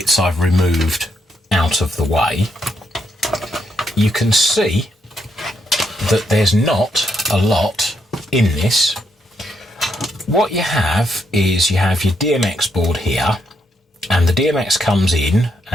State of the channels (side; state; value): both; normal; correlation 0.78